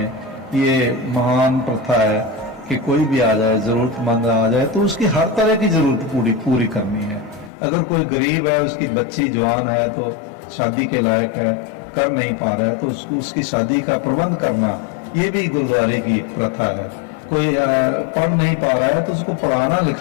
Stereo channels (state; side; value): drops out; right; at 7.5 s